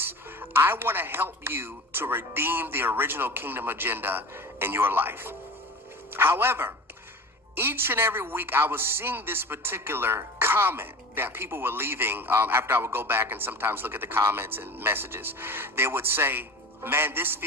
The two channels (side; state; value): both; normal; correlation 0.35